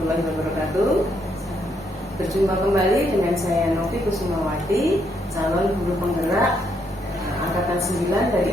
wabarakatuh. Berjumpa kembali dengan saya Novi Kusumawati, calon guru penggerak angkatan 9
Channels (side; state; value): both; normal; correlation 0.75